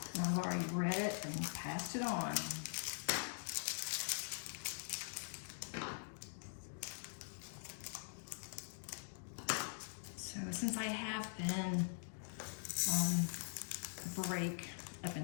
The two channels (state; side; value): silent; right; digital silence